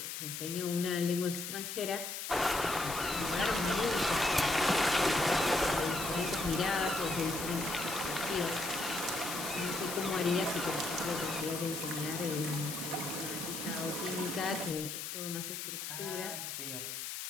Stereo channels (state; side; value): noise; left; hiss, 6 dB below the sound